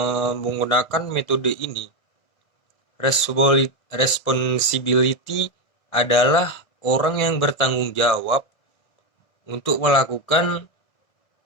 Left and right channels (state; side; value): late; right; 1.6 ms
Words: menggunakan metode ini, responsibility adalah orang yang bertanggung jawab untuk melakukan